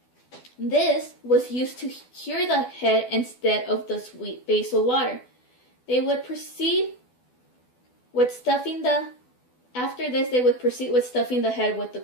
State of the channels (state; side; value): late; right; 12 ms